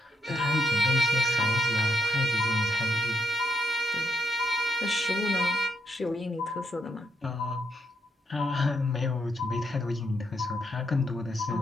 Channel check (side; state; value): both; normal; correlation 0.76